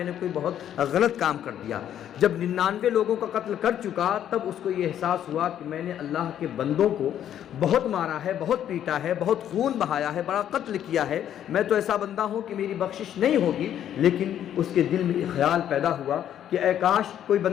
نے کوئی بہت غلط کام کر دیا۔ جب 99 لوگوں کا قتل کر چکا تب اس کو یہ احساس ہوا کہ میں نے اللہ کے بندوں کو بہت مارا ہے، بہت پیٹا ہے، بہت خون بہایا ہے، بڑا قتل کیا ہے، میں تو ایسا بندہ ہوں کہ میری بخشش نہیں ہوگی۔ لیکن اس کے دل میں ایک خیال پیدا ہوا کہ اے کاش کوئی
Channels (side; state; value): right; quieter; 10.4 dB